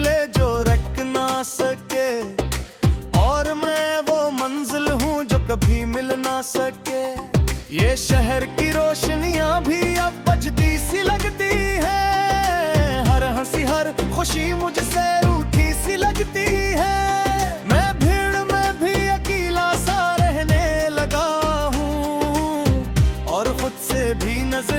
जो रख ना सके, और मैं वो मंजिल हूँ जो कभी मिल ना सके। ये शहर की रोशनियां भी अब बजती सी लगती है, हर हंसी हर खुशी मुझसे रूठी सी लगती है। भी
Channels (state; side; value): identical; both; correlation 1.00